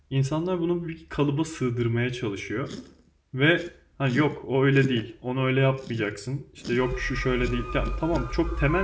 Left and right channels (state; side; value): identical; both; correlation 1.00